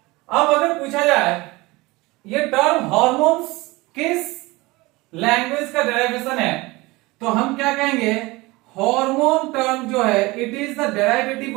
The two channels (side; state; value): left; quieter; 22.2 dB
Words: अब अगर पूछा जाए ये टर्म हॉर्मोन्स किस लैंग्वेज का डेरिवेशन है, तो हम क्या कहेंगे? हार्मोन टर्म जो है it is the